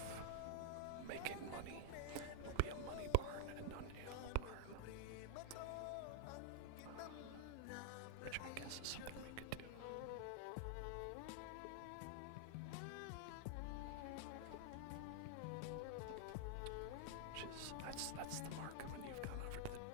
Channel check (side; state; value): both; different; correlation 0.00